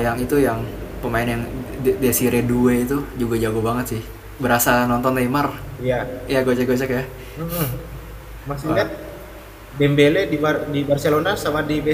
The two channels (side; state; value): both; identical; correlation 1.00